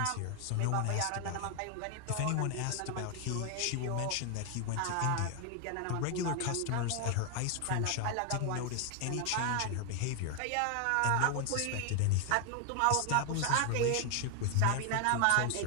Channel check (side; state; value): both; different; correlation 0.01